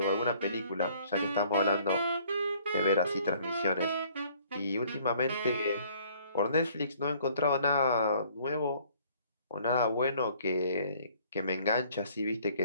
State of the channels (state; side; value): inverted; both; correlation -0.59